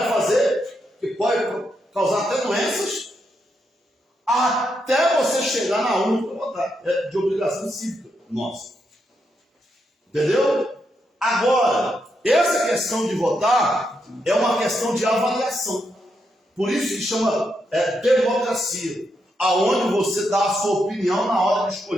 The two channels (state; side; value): normal; both; correlation 0.81